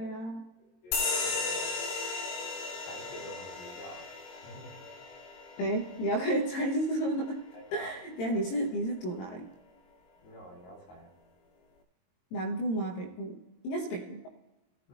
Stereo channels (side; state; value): right; late; 22 ms